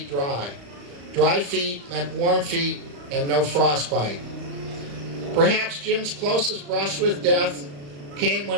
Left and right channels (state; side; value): late; left; 35 ms